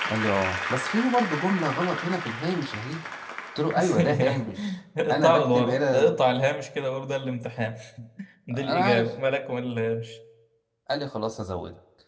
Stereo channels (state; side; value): identical; both; correlation 1.00